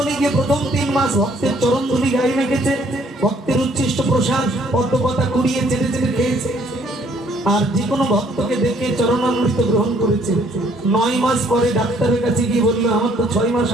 গিয়ে প্রথম 3 মাস ভক্তের চরণ ধুলি গায়ে মেখেছে, ভক্তের উচ্ছিষ্ট প্রসাদ পদ্মপাতা কুড়িয়ে চেটে চেটে খেয়েছে। আর যে কোনো ভক্তকে দেখে চরণামৃত গ্রহণ করেছে। 9 মাস পরে ডাক্তারের কাছে গিয়ে বললো, আমার তো 6 মাস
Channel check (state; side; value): normal; both; correlation 0.63